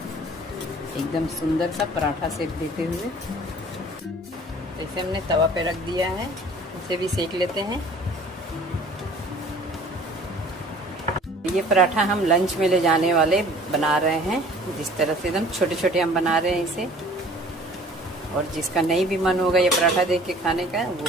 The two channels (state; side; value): normal; both; correlation 0.49